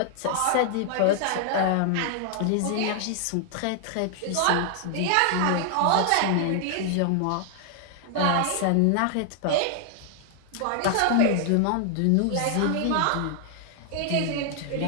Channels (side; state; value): both; different; correlation 0.00